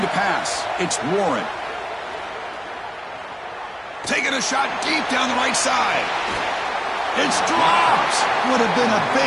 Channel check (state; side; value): identical; both; correlation 1.00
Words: to pass. It's Warren. Taking a shot deep down the right side. It's dropped. Would have been a